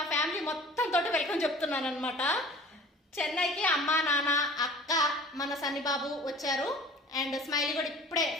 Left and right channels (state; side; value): normal; both; correlation 0.44